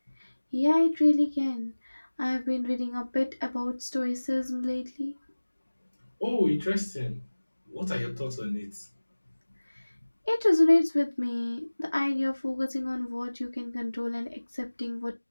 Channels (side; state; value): both; inverted; correlation -1.00